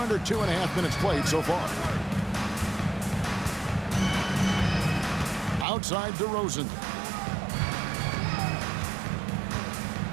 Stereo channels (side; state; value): left; drops out; at 5.7 s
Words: 2.5 minutes played so far. Outside DeRozan.